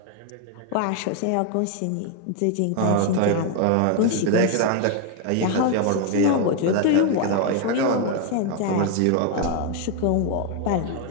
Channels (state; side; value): different; both; correlation 0.00